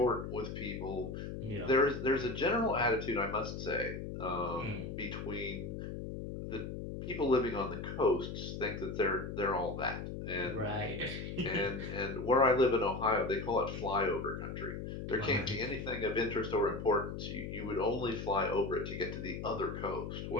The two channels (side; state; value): left; noise; hum, 6 dB below the sound